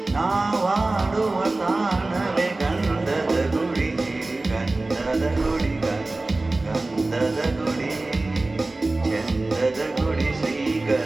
ನಾವಾಡುವ ತಾಣವೇ ಗಂಧದ ಗುಡಿ, ಗಂಧದ ಗುಡಿ, ಗಂಧದ ಗುಡಿ, ಚಂದದ ಗುಡಿ,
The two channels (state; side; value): quieter; left; 3.1 dB